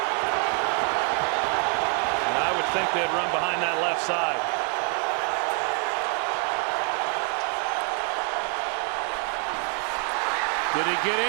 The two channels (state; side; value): quieter; left; 39.9 dB